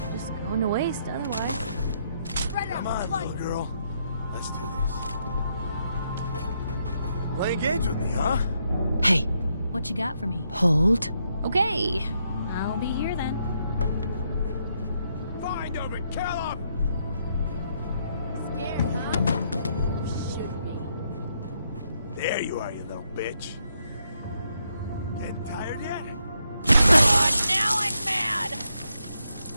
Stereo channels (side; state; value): both; inverted; correlation -0.77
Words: Just going to waste otherwise. Come on, little girl. Let's do this. Play games with me, huh? Hey, What you got for me? hold. Okay. I'll be here then. Find him and kill him! Scared, huh? You should be. There you are, you little bitch. Getting tired yet? Now I'm mad!